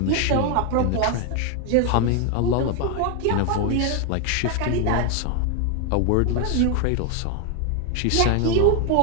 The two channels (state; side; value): different; both; correlation 0.01